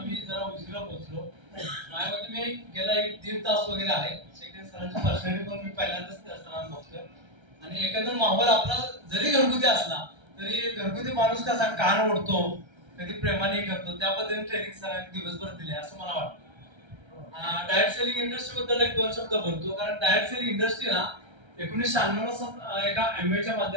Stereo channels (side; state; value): left; late; 1.3 ms